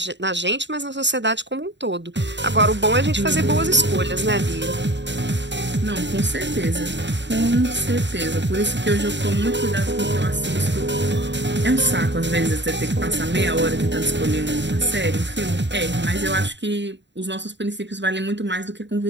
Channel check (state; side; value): late; left; 0.52 ms